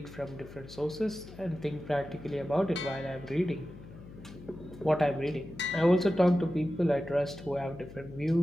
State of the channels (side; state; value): left; noise; hum, 16 dB below the sound